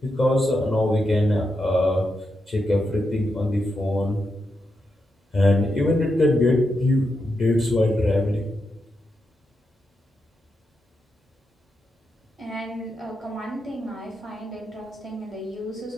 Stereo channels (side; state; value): both; normal; correlation 0.85